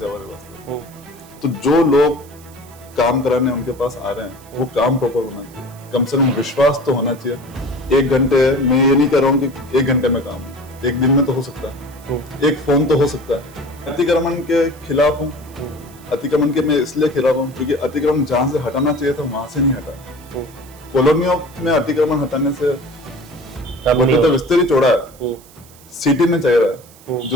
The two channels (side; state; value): right; noise; hiss, 24 dB below the sound